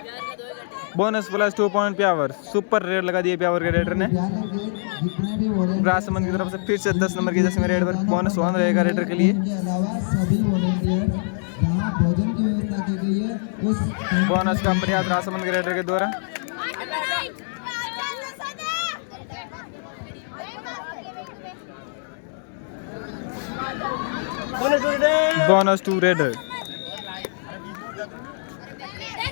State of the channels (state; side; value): silent; right; digital silence